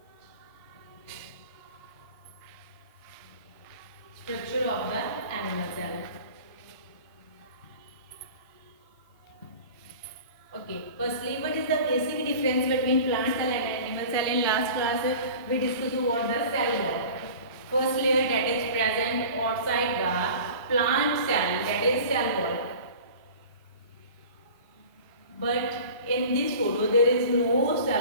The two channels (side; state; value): both; inverted; correlation -0.40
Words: structure of the animal cell. Okay, firstly, what is the basic difference between plant cell and animal cell? In last class, we discussed what the cell wall. First layer that is present outside the plant cell, that is cell wall. But in this photo, there is no